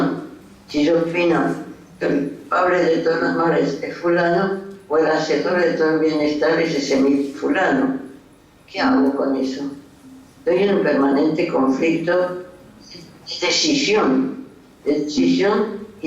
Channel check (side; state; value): both; identical; correlation 1.00